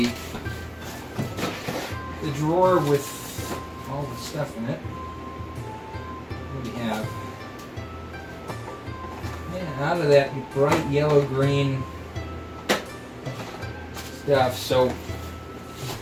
drawer with all the stuff in it. What do we have? Yeah, out of that bright yellow-green stuff. So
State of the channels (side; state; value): both; identical; correlation 1.00